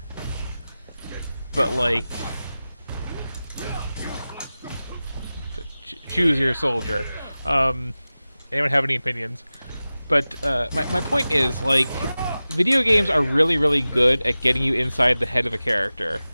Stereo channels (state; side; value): inverted; both; correlation -0.96